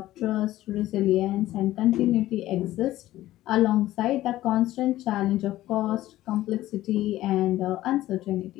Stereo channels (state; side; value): quieter; right; 15.2 dB